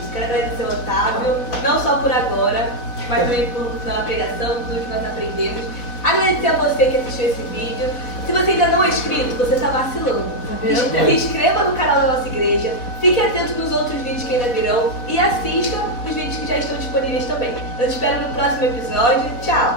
quero agradecer ao Otávio, não só por agora, mas também pela pregação, tudo que nós aprendemos. Agradecer a você que assistiu esse vídeo. Se você ainda não é inscrito, você está vacilando. Se inscreva no canal da nossa igreja, fique atento nos outros vídeos que ainda virão e assista os vídeos que já estão disponíveis também. Eu te espero no próximo episódio.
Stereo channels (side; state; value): right; late; 4.1 ms